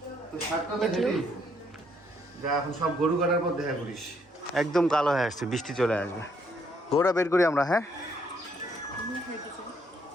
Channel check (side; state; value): both; normal; correlation 0.70